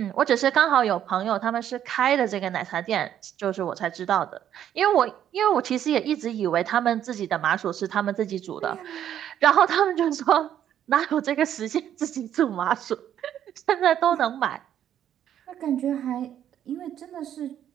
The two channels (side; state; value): left; quieter; 10.4 dB